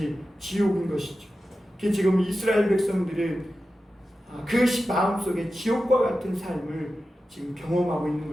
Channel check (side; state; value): both; normal; correlation 0.92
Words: 지옥인 것이죠. 지금 이스라엘 백성들은 그 마음속에 지옥과 같은 삶을 지금 경험하고 있는